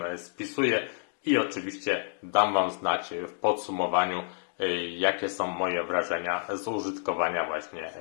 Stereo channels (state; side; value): silent; right; digital silence